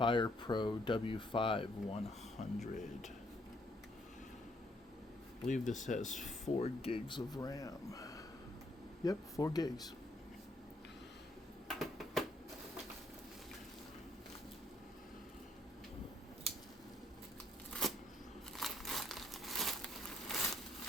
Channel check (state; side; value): normal; both; correlation 0.69